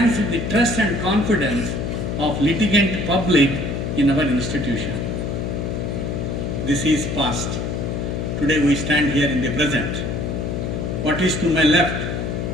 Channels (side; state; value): left; noise; hum, 2 dB below the sound